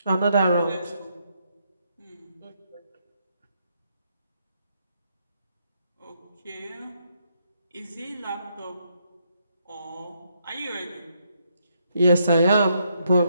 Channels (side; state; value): both; inverted; correlation -0.76